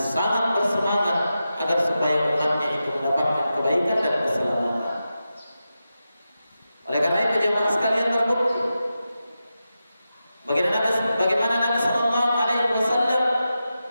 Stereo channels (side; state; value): both; inverted; correlation -0.91